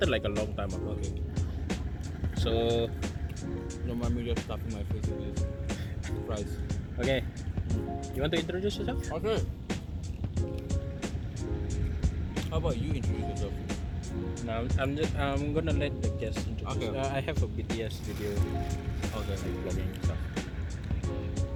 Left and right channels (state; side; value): identical; both; correlation 1.00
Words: like a long time ago. Okay. So Don't mind me just stuffing my face with this fries. okay. You want to introduce yourself? Okay. How about you introduce yourself? No, I'm gonna let the guests introduce. Okay. I have a BTS video, Okay. like vlogging and stuff.